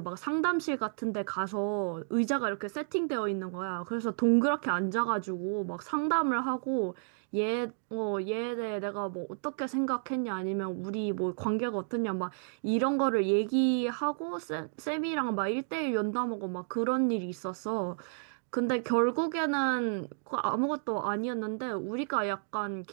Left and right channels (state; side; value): silent; left; digital silence